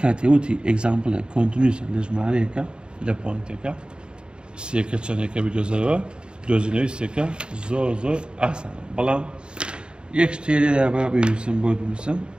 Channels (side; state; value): left; late; 0.052 ms